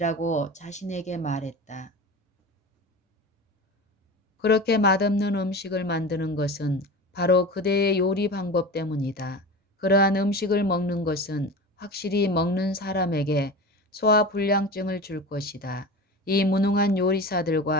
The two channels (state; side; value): normal; both; correlation 0.31